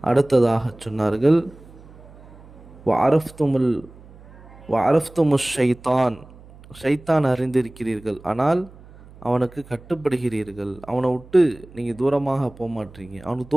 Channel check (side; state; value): right; noise; hum, 21 dB below the sound